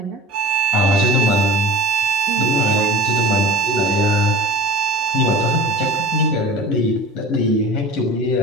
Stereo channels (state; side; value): normal; both; correlation 0.37